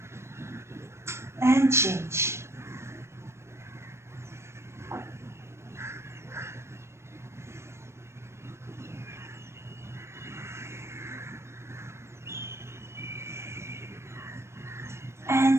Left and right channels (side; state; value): left; late; 0.13 ms